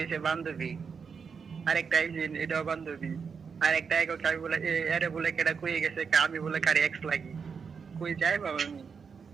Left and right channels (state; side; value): quieter; left; 5.9 dB